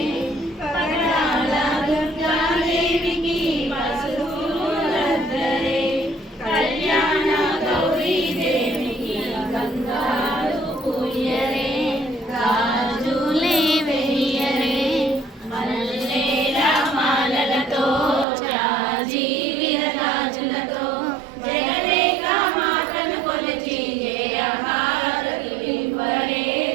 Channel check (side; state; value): left; drops out; at 18.2 s